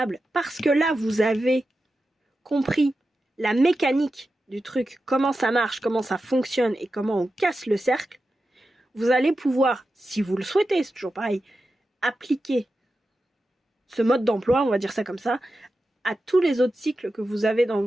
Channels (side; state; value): both; normal; correlation 0.91